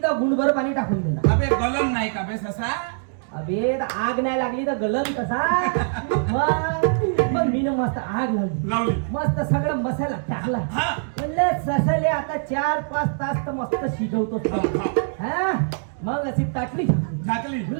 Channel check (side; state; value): left; silent; digital silence